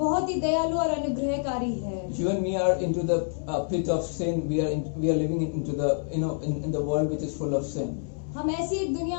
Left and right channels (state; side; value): silent; right; digital silence